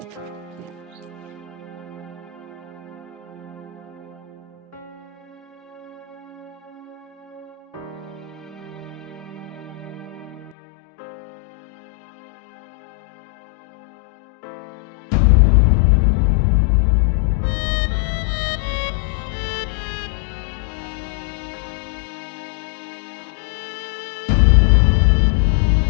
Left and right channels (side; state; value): right; drops out; at 10.6 s